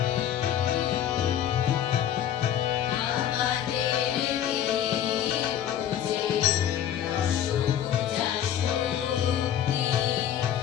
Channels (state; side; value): quieter; right; 10.3 dB